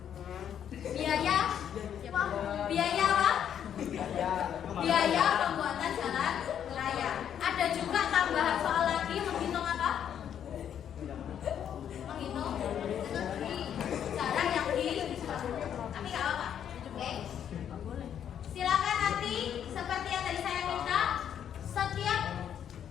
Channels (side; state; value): right; quieter; 9.2 dB